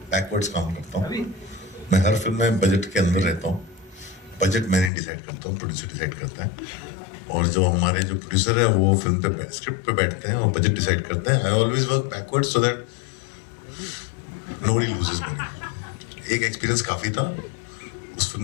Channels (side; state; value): right; drops out; at 4.9 s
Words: बैकवर्ड्स काम करता हूँ. मैं हर फिल्म में बजट के अंदर रहता हूँ. बजट मैंने डिसाइड करता हूँ, प्रोड्यूसर डिसाइड करता है. और जो हमारे जो प्रोड्यूसर है वो फिल्म पे स्क्रिप्ट पे बैठते हैं और बजट डिसाइड करते हैं. I always work backwards so that nobody loses money. एक एक्सपीरियंस काफी था. उस फिल्म